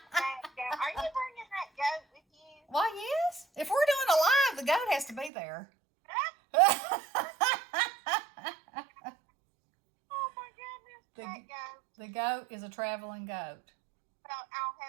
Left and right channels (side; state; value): left; drops out; at 5.3 s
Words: you bringing that goat with you? Why, yes. If we're doing a live, the goat has to be there. Oh, my goodness. That goat. The goat is a traveling goat. So I'll